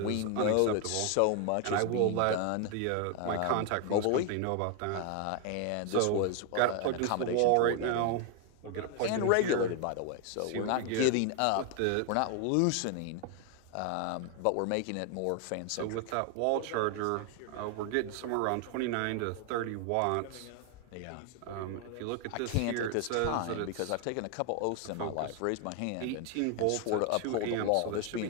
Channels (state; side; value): different; both; correlation 0.01